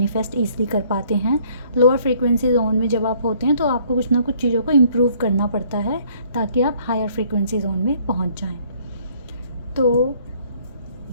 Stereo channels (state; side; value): inverted; both; correlation -0.61